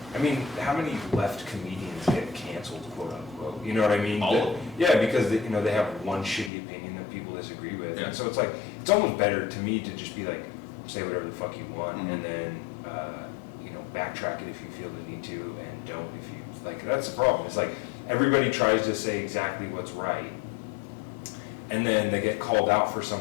I mean, how many left comedians get canceled, quote unquote? You know what I mean? All of them. Yeah, because they have one shitty opinion that people disagree with. Yeah. And so it's like, it's almost better to me to just be like, say whatever the fuck you want, and then backtrack it if you feel the need to, and don't if you like. That's the problem. It's like everybody tries to say exactly what's right, and then they get called out for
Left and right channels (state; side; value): drops out; right; at 6.5 s